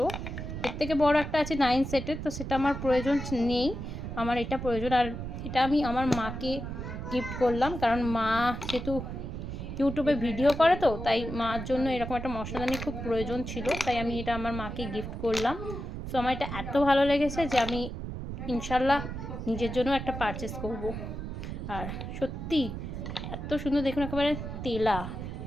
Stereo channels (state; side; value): noise; right; rumble, 6 dB below the sound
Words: এর থেকে বড় একটা আছে 9 সেটের, তো সেটা আমার প্রয়োজন নেই, আমার এটা প্রয়োজন। আর এটা আমি আমার মাকে গিফট করলাম, কারণ মা যেহেতু ইউটিউবে ভিডিও করে, তো তাই মার জন্য এরকম একটা মশলাদানি খুব প্রয়োজন ছিল, তাই আমি এটা আমার মাকে গিফট করলাম। সো আমার এটা এত ভালো লেগেছে যে আমি ইনশাল্লাহ নিজের জন্য একটা পারচেস করব। আর সত্যি এত সুন্দর, দেখুন একেবারে তেলা।